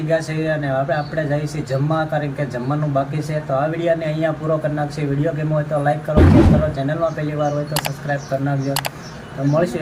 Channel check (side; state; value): both; identical; correlation 1.00